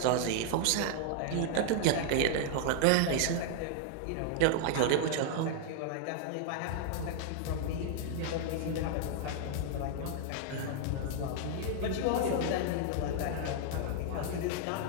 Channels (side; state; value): both; different; correlation 0.00